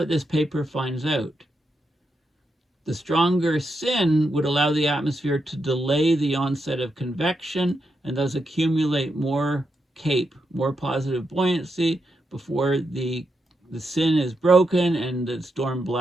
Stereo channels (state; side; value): normal; both; correlation 0.84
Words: this paper finds out. The stronger SIN would allow the atmosphere to delay the onset of convection and thus accumulate more CAPE, more positive buoyancy, before the sin is broken and the storm